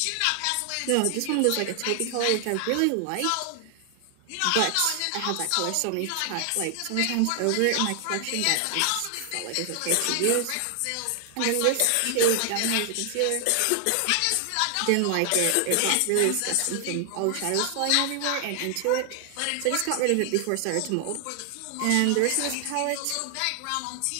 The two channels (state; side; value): different; both; correlation 0.00